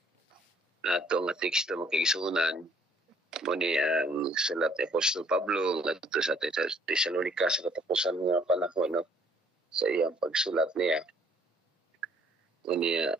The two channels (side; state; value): both; normal; correlation 0.61